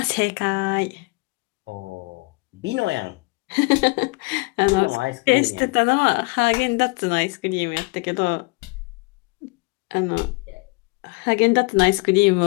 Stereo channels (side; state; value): right; quieter; 28.0 dB